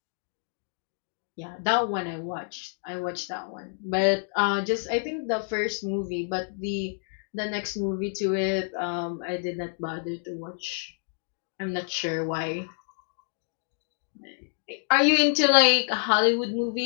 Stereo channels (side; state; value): right; silent; digital silence